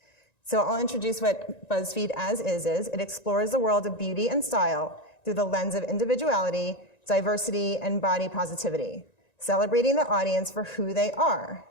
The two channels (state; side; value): late; right; 1.9 ms